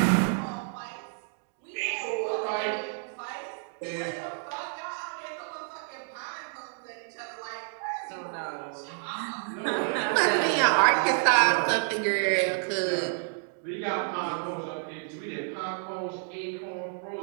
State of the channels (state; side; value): silent; left; 55 dB below the other